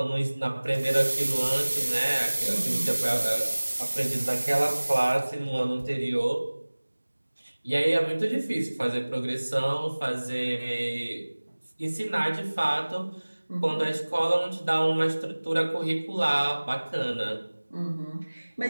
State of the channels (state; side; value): inverted; both; correlation -1.00